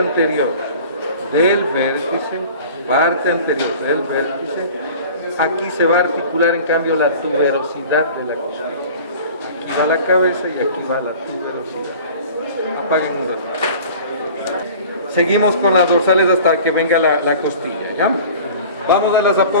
del vértice, aquí se va a articular en cambio la tuberosidad de la costilla. Aquí va la cabeza y aquí va la tuberosidad. Apaguen un rato. Seguimos con las dorsales hasta que venga la costilla, ¿ya? Vamos a las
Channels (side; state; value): both; inverted; correlation -0.43